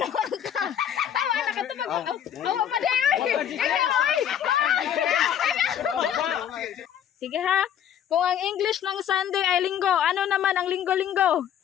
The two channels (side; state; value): right; quieter; 9.6 dB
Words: ka. Tawa, nakatawag. Awa pa din. Sige ha. Kung ang English ng Sunday ay linggo, ano naman ang linggo-linggo?